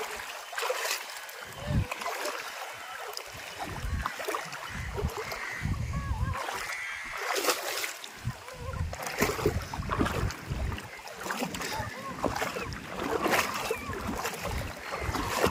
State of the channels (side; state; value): both; identical; correlation 1.00